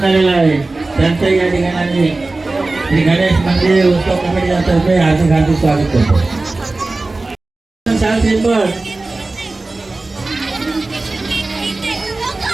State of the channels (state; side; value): quieter; left; 3.2 dB